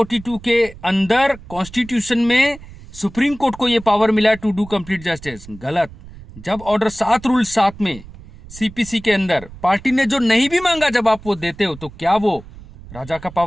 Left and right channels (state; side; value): noise; right; rumble, 18 dB below the sound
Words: के अंदर कॉन्स्टिट्यूशन में सुप्रीम कोर्ट को यह पावर मिला टू डू कंप्लीट जस्टिस। गलत। जब ऑर्डर 7 रूल 7 में सीपीसी के अंदर पार्टी ने जो नहीं भी मांगा जब आप वो देते हो तो क्या वो राजा का